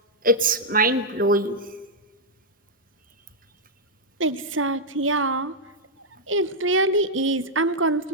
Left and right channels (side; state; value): both; normal; correlation -0.04